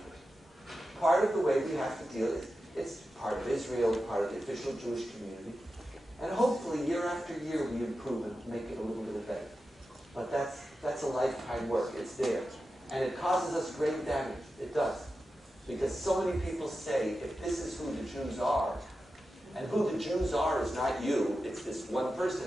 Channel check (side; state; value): both; normal; correlation 0.91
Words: Part of the way we have to deal is, it's part of Israel, part of the official Jewish community. And hopefully year after year we improve and make it a little bit better. But that's a lifetime work. It's there. And it causes us great damage. It does. Because so many people say, if this is who the Jews are, and who the Jews are is not you, it's this one